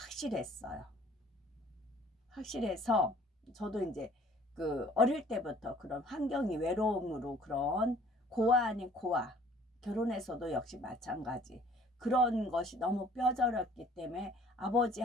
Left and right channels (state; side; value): normal; both; correlation 0.54